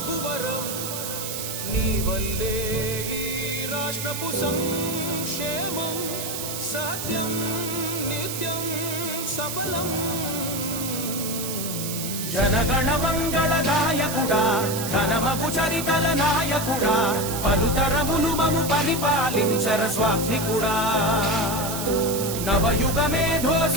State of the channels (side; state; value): right; noise; hiss, 5 dB below the sound